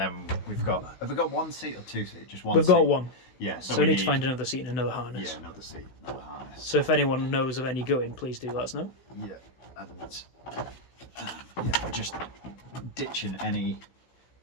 have we got one seat or 2 seats? Just one. We've got one. Yeah. So we need to find another seat and another harness. Yeah, another seat, another harness. So if anyone knows of any going, please do let us know. Yeah. And we're just ditching any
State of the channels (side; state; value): right; late; 16 ms